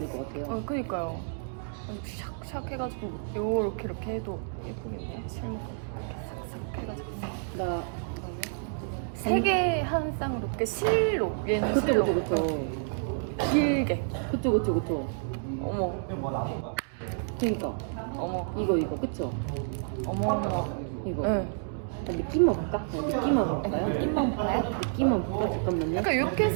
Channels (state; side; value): silent; left; digital silence